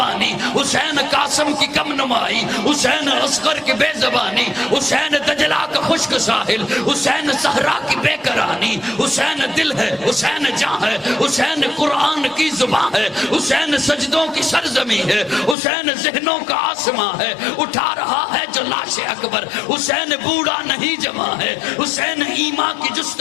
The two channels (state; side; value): drops out; right; at 15.6 s